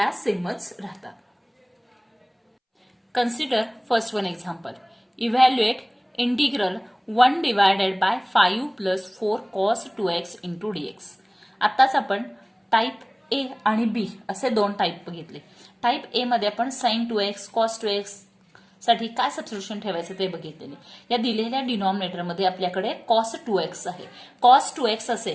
सेमच राहतात. Consider first one example. Evaluate integral 1 divided by 5 plus 4 cos 2x into dx. आताच आपण टाईप ए आणि बी असे दोन टाईप बघितले. टाईप ए मध्ये आपण sin 2x cos 2x साठी काय सबस्टिट्यूशन ठेवायचं ते बघितलेले. या दिलेल्या डिनॉमिनेटर मध्ये आपल्याकडे cos 2x आहे. cos 2x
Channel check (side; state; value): both; identical; correlation 1.00